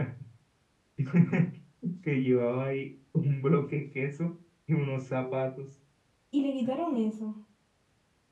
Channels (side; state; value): both; identical; correlation 1.00